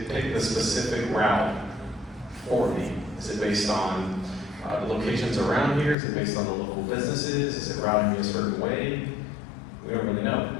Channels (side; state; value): right; drops out; at 6.0 s